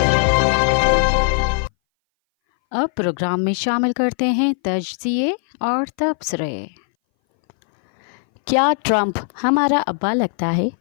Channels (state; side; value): silent; right; 61 dB below the other